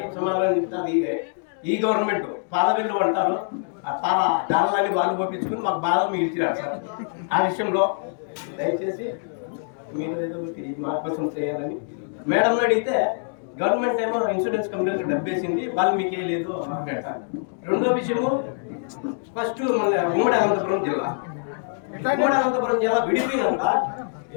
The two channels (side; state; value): right; silent; digital silence